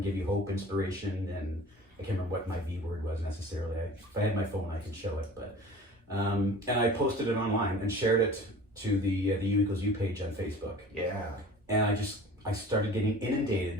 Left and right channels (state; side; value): normal; both; correlation 0.42